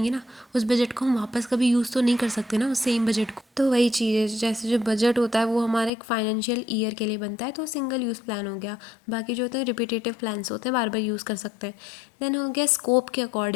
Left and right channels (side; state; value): right; drops out; at 5.9 s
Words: ना, उस बजट को हम वापस कभी यूज़ तो नहीं कर सकते ना उस सेम बजट को। तो वही चीज़ है, जैसे जो बजट होता है वो हमारा एक फाइनेंशियल ईयर के लिए बनता है, तो सिंगल यूज़ प्लान हो गया। बाकी जो होते हैं रिपीटेटिव प्लान्स होते हैं, बार बार यूज़ कर सकते हैं। देन हो गया स्कोप के